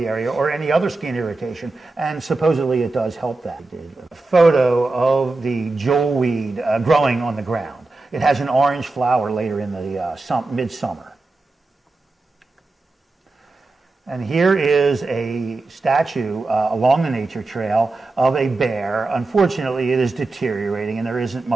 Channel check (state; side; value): quieter; left; 3.3 dB